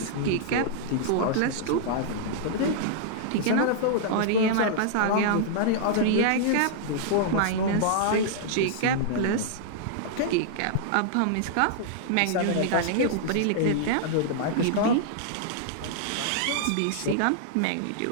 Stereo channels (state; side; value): different; both; correlation -0.01